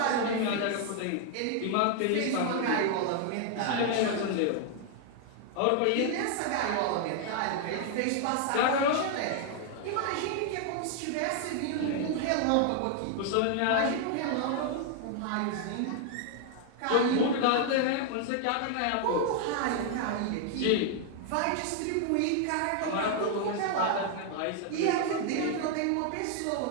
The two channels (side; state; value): both; different; correlation 0.00